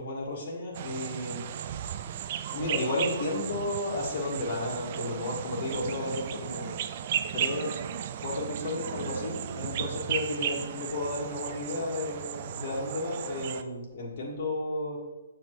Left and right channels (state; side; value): inverted; both; correlation -0.53